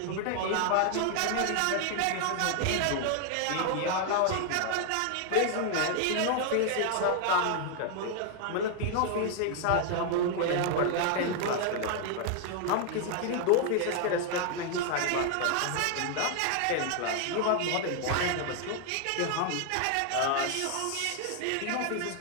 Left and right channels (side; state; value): both; different; correlation 0.00